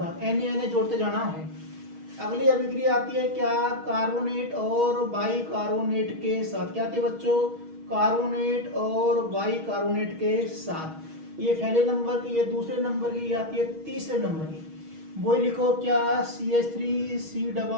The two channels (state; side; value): late; left; 6.3 ms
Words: Na जोड़ते जाना है। अगली अभिक्रिया आती है क्या, कार्बोनेट और बाइकार्बोनेट के साथ। क्या आती है बच्चों, कार्बोनेट और बाइकार्बोनेट के साथ। ये पहले नंबर की, ये दूसरे नंबर की, आती है तीसरे नंबर की। वो लिखो क्या,